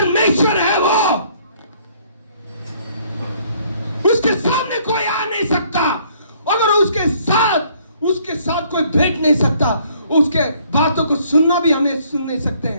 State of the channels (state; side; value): inverted; both; correlation -0.63